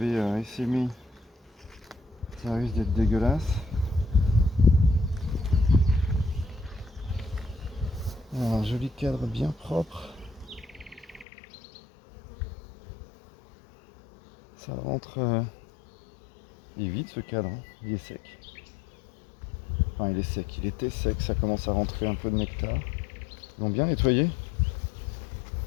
essaimé, ça risque d'être dégueulasse. Alors, un joli cadre bien propre. Ça rentre. Il est vide ce cadre, hein. Il est sec. Enfin, il est sec, il était sec, ça commence à rentrer un peu de nectar. Ils l'ont bien nettoyé.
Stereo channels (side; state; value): right; drops out; at 11.2 s